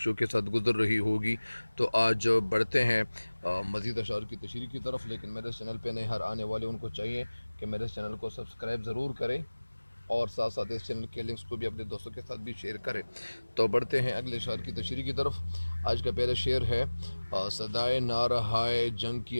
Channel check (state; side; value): inverted; both; correlation -1.00